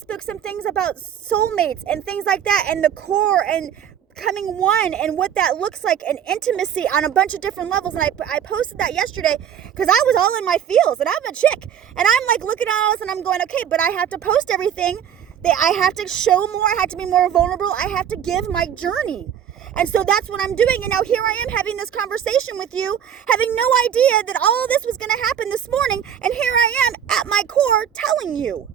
some things about soulmates and things like that, and the core and becoming one and what that looks like, and intimacy on a bunch of different levels. And I posted that yesterday because I was all in my feels, and I'm a chick, and I'm like looking at all this and I'm going, okay, but I have to post everything. I have to show more. I have to be more vulnerable. I have to give my journey. And so that's what I'm doing. And now here I am having this conversation with you, having no idea that all this was going to happen this morning. And here I am at my core telling you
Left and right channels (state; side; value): quieter; left; 9.0 dB